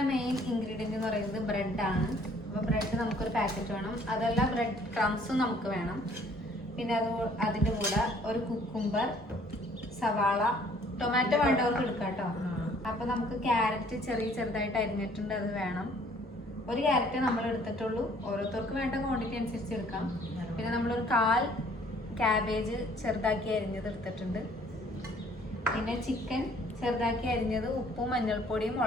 മെയിൻ ഇൻഗ്രീഡിയൻറ്റ് എന്ന് പറയുന്നത് ബ്രെഡാണ്. അപ്പോൾ ബ്രെഡ് നമുക്കൊരു പാക്കറ്റ് വേണം. അതല്ല ബ്രെഡ് ക്രംസും നമുക്ക് വേണം. പിന്നെ അതിൻ്റെ കൂടെ ഒരു കുക്കുംബർ, സവാള, ടൊമാറ്റോ വേണ്ടവർക്ക് എടുക്കാം കേട്ടോ. അപ്പോൾ നമുക്ക് ക്യാരറ്റ് ചെറുതായിട്ട് അരിഞ്ഞിട്ടുണ്ട്, അത് വേണം. ഒരു ക്യാരറ്റ് നമ്മൾ എടുത്തിട്ടുള്ളൂ, ഓരോരുത്തർക്ക് വേണ്ട ക്വാണ്ടിറ്റി അനുസരിച്ച് എടുക്കാം. പിന്നെ നമ്മളൊരു 1/4 ക്യാബേജ് ചെറുതാക്കി അരിഞ്ഞത് എടുത്തിട്ടുണ്ട്. പിന്നെ ചിക്കൻ ചെറുതാക്കി അരിഞ്ഞത് ഉപ്പും മഞ്ഞൾപ്പൊടിയും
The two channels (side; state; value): both; normal; correlation 0.59